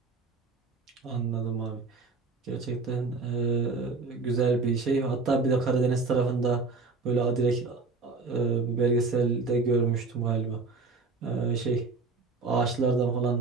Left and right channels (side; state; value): left; quieter; 4.1 dB